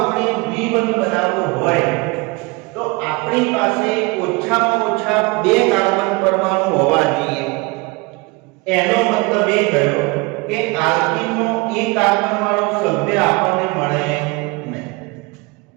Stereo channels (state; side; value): quieter; left; 26.1 dB